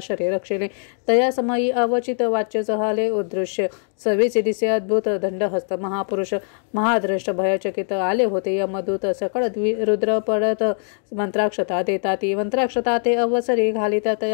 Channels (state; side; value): silent; right; 64 dB below the other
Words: रक्षले तया समयी अवचित वाच्य जहाले उदृश्य सवीचे दिसे अद्भुत दंडहस्त महापुरुष महाद्रष्ट भयचकित आले होते यमदूत सकळ रुद्र पडत मंत्राक्षता देता ती मंत्राक्षता ते अवसरी घालिता